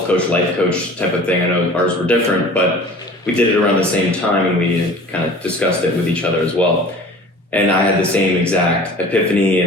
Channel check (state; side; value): normal; both; correlation 0.43